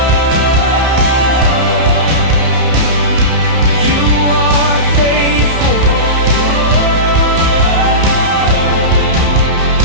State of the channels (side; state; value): left; late; 31 ms